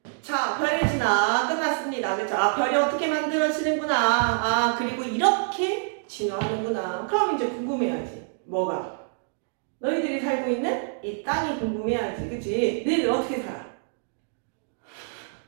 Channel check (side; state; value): left; silent; digital silence